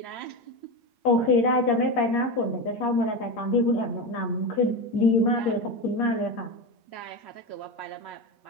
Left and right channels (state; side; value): late; right; 8.5 ms